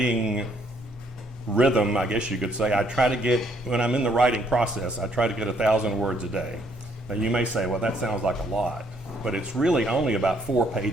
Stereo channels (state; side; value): normal; both; correlation 0.68